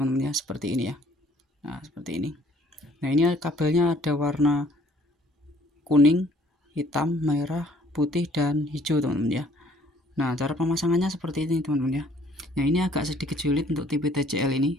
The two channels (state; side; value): normal; both; correlation 0.59